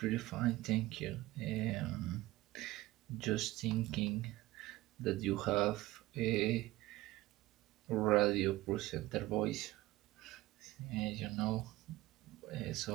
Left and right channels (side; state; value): left; quieter; 18.3 dB